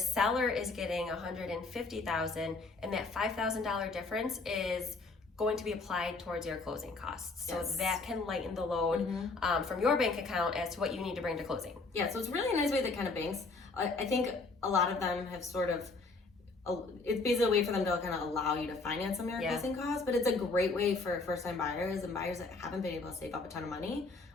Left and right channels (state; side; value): quieter; right; 3.7 dB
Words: is getting $150,000, and that $5,000 difference is going to be applied towards your closing costs. So that can lighten the load from your bank account as to what you need to bring to closing. Yeah, so it's really a nice way that kind of banks, I think a lot of them have sort of, it's basically a way for them to kind of allow you to finance some of your closing costs, but it's a great way for first-time buyers and buyers that haven't been able to save up a ton of money